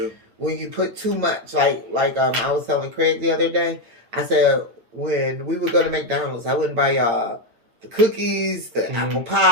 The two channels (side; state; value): left; late; 9.0 ms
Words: When you put too much, like I was telling Craig the other day, I said when we would go to McDonald's, I wouldn't buy y'all the cookies, the apple